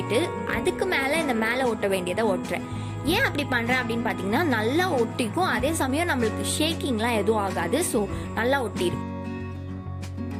அதுக்கு மேல இந்த மேல ஒட்ட வேண்டியதை ஒட்டுறேன். ஏன் அப்படி பண்றேன் அப்படின்னு பாத்தீங்கன்னா, நல்லா ஒட்டிக்கும், அதே சமயம் நம்மளுக்கு ஷேக்கிங்லாம் எதுவும் ஆகாது. ஸோ நல்லா ஒட்டிடும்.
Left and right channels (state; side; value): identical; both; correlation 1.00